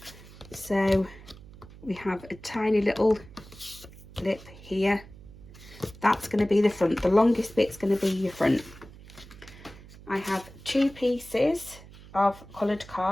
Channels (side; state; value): right; noise; hum, 19 dB below the sound